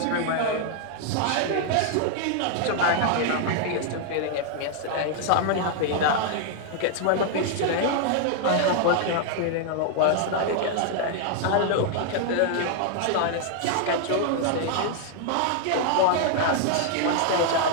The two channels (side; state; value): both; different; correlation 0.00